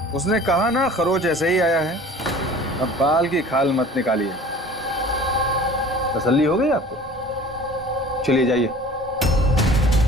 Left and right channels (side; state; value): both; normal; correlation 0.45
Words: उसने कहा ना खरोच ऐसे ही आया है। अब बाल की खाल मत निकालिए। तसल्ली हो गई आपको? चलिए जाइए।